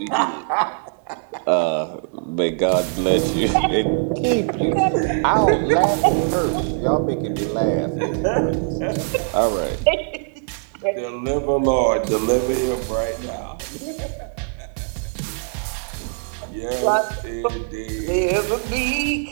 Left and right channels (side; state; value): left; silent; 64 dB below the other